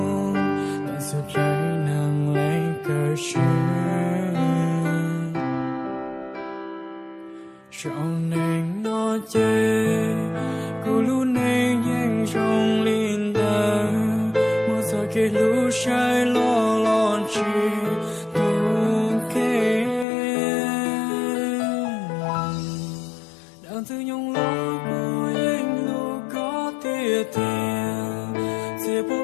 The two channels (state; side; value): drops out; right; at 20.1 s